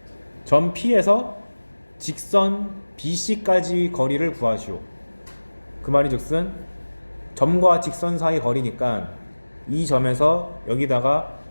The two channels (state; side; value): inverted; both; correlation -1.00